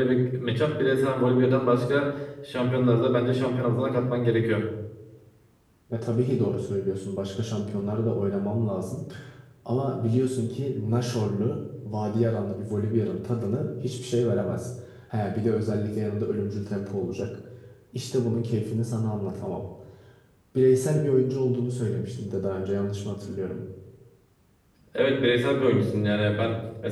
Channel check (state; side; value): identical; both; correlation 1.00